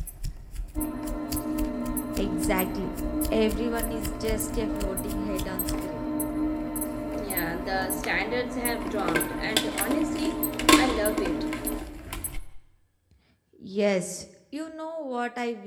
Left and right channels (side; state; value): both; identical; correlation 1.00